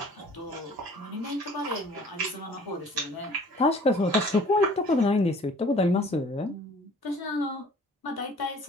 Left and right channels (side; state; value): both; normal; correlation 0.51